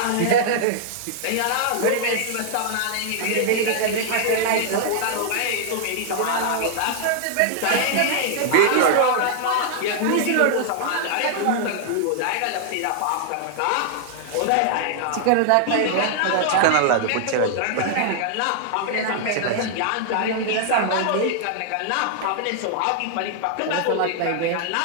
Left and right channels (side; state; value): both; different; correlation -0.01